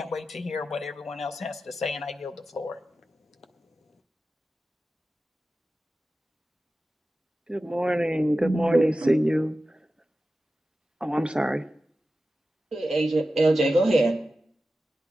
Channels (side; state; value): both; normal; correlation 0.93